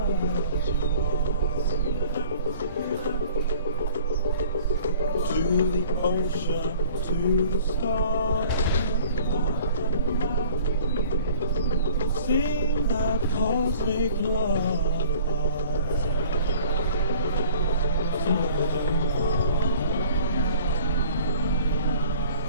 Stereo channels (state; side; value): inverted; both; correlation -0.49